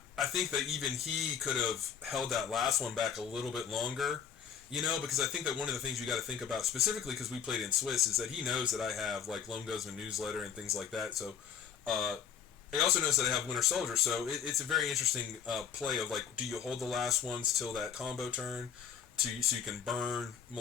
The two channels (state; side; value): quieter; right; 8.0 dB